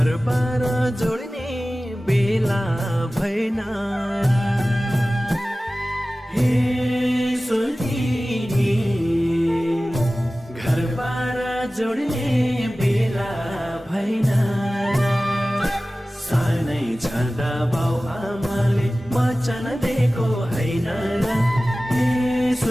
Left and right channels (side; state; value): both; normal; correlation 0.97